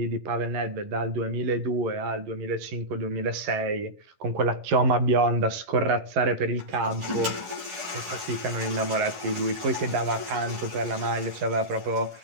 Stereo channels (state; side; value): late; left; 10 ms